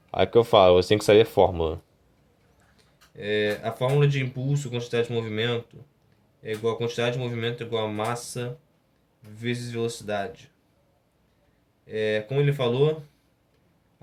Aí que eu falo: você tem que saber a fórmula. A fórmula de impulso, quantidade de movimento, é igual a quantidade de movimento é igual a massa vezes velocidade. Como ele falou,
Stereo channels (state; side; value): identical; both; correlation 1.00